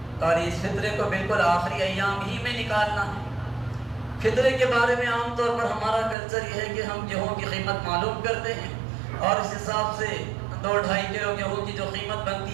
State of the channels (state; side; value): drops out; left; at 6.2 s